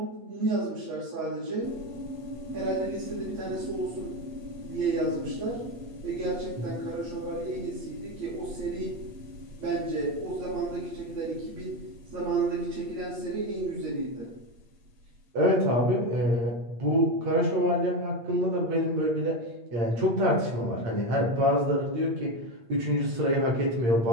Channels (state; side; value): late; left; 8.6 ms